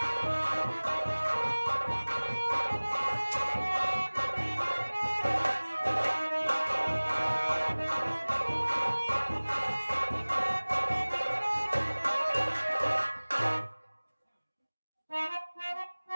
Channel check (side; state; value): both; inverted; correlation -1.00